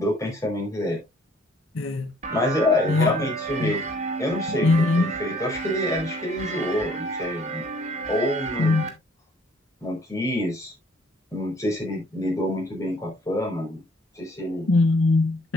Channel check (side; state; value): both; normal; correlation 0.60